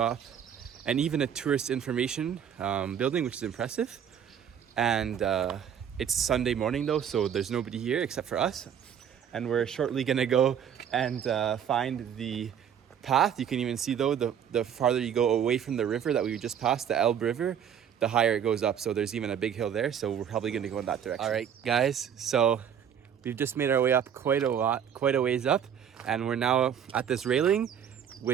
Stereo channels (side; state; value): left; quieter; 8.6 dB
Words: and even a tourist information building, which is impressive. And it's Sunday morning though, so there's nobody here except for us. And we're shortly gonna go and find the path. You can even see though, the farther you go away from the river that we just passed, the Elbe River, the higher it goes up. So there's even a big hill there, so we're probably gonna go in that direction. All right, guys, so we've just made our way up quite a ways up, and we're now at this railing,